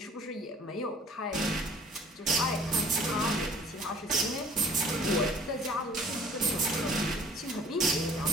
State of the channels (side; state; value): both; normal; correlation 0.52